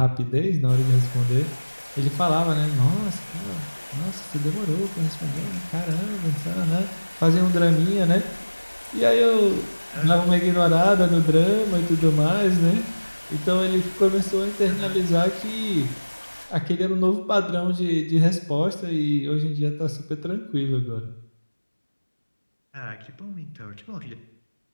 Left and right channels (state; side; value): inverted; both; correlation -1.00